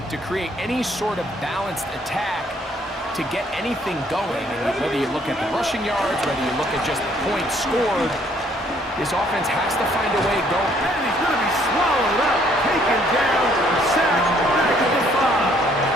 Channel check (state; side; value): normal; both; correlation 0.64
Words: to create any sort of balanced attack to get anything going. And whether you look at the rushing yards, whether you look at just the points scored, this offense has to find a way going. And he's going to be swallowed up, taken down, sacked back at the 5.